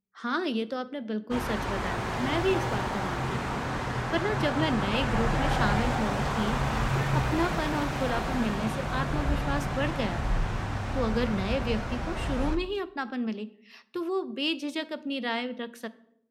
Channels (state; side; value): identical; both; correlation 1.00